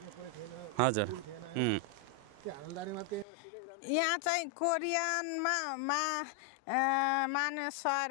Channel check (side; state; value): right; drops out; at 3.2 s